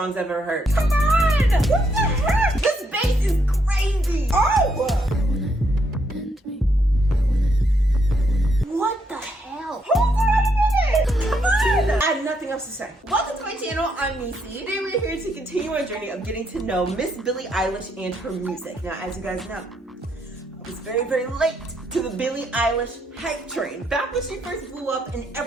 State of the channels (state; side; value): normal; both; correlation 0.75